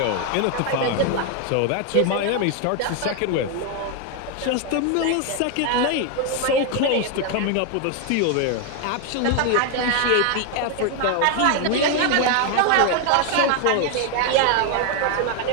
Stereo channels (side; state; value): both; different; correlation 0.01